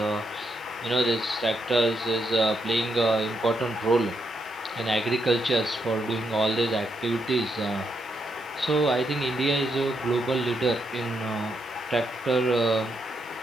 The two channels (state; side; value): noise; right; hiss, 27 dB below the sound